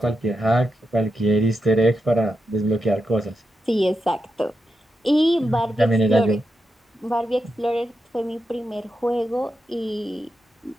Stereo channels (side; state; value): both; normal; correlation 0.86